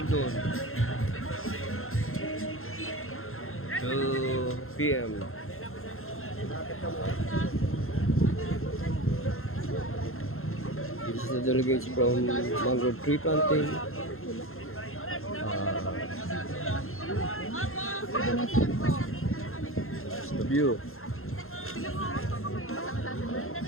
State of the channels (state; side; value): late; right; 0.61 ms